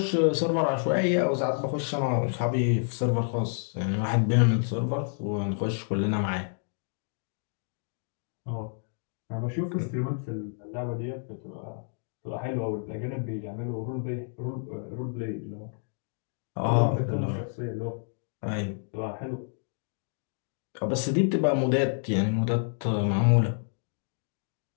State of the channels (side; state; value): right; silent; digital silence